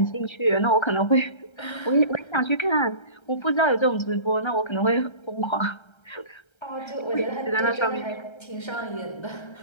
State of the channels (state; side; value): late; right; 1.3 ms